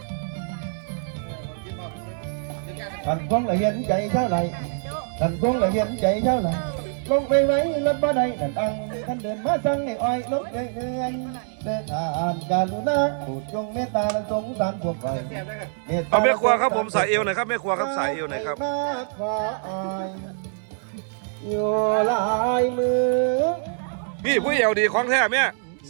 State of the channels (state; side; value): silent; left; digital silence